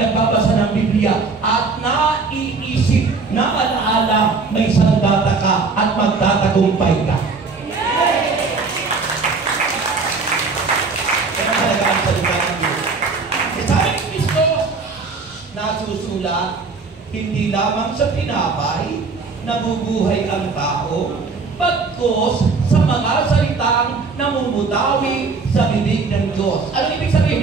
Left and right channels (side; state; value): left; quieter; 4.4 dB